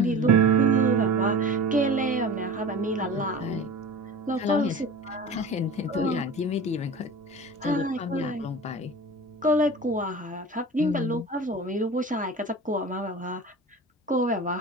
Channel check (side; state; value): both; normal; correlation 0.36